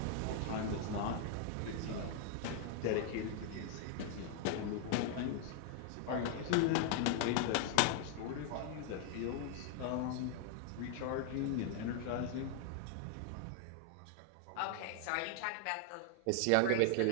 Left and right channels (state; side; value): different; both; correlation 0.00